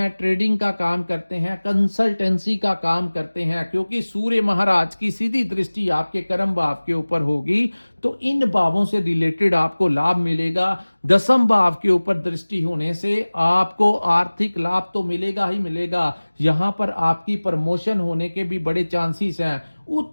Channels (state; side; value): inverted; both; correlation -1.00